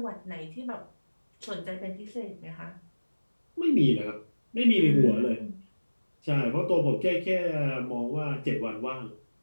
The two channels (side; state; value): both; inverted; correlation -1.00